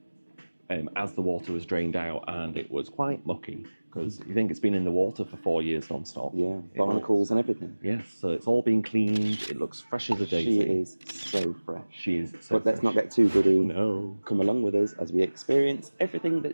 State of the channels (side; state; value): both; inverted; correlation -1.00